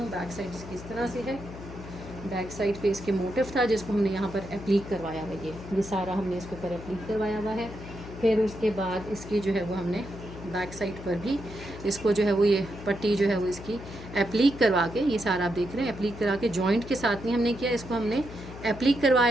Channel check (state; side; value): noise; left; hum, 13 dB below the sound